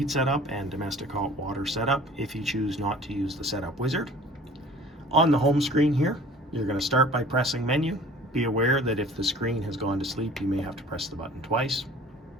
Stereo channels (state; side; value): normal; both; correlation 0.48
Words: setup and domestic hot water setup if you choose not to use the setup wizard. On the home screen here, you're going to start by pressing menu. Be aware that if the screen has gone to sleep, you may have to press the button twice.